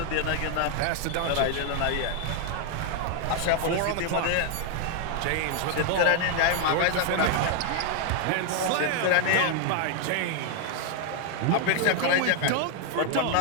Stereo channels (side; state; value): both; different; correlation 0.00